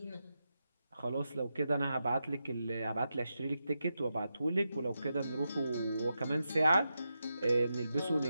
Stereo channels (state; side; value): inverted; both; correlation -0.88